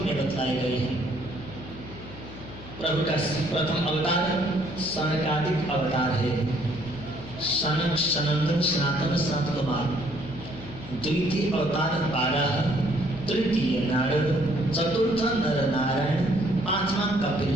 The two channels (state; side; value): noise; left; hum, 15 dB below the sound